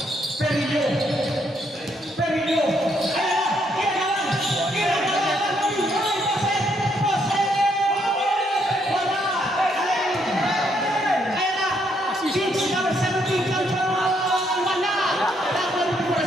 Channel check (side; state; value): both; normal; correlation 0.73